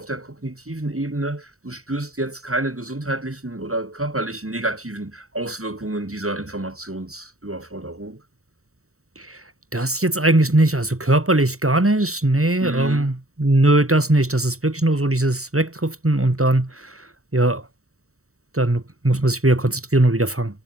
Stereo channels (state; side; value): late; left; 0.64 ms